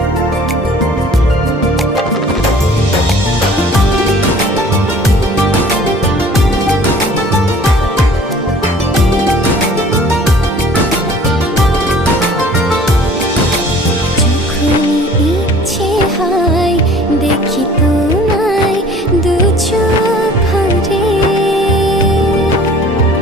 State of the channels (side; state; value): both; normal; correlation 0.50